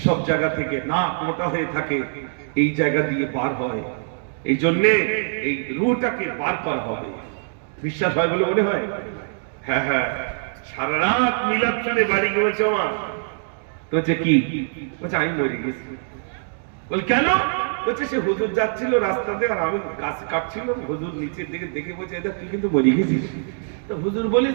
সব জায়গা থেকে নাক মোটা হয়ে থাকে, এই জায়গা দিয়ে বার হয়। এই জন্যে এই রুহটাকে বার করা হবে। বিশ্বাস হয় বলে মনে হয়? হ্যাঁ হ্যাঁ, সারা রাত মিলাদ শুনে বাড়ি গেছে আমার। তো কি বলছে? আমি মরে গেছি। বল কেন? বলছে সে হুজুর যাচ্ছিল রাস্তাতে, আর আমি গাছ কাটছিলাম, হুজুর নিচের দিকে দেখে বলছে এটা তুই কিন্তু মরে গেছিস। তো হুজুর বলিস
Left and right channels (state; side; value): silent; left; digital silence